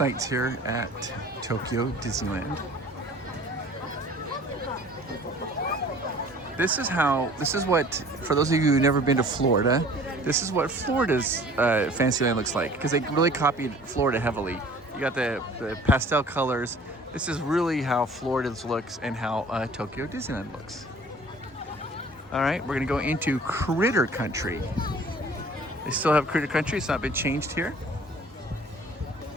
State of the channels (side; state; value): both; normal; correlation 0.49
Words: here at Tokyo Disneyland. This is what, for those of you who've never been to Florida, this is what Florida's Fantasyland looks like, because they really copied Florida heavily. You got the pastel colors. This is really how Florida's looks and how Tokyo Disneyland looks. All right, we're gonna go into Critter Country. They still have Critter Country, it's not been changed here.